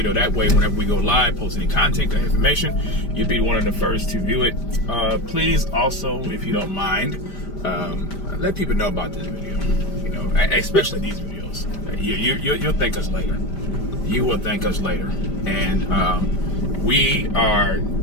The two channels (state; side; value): late; right; 5.1 ms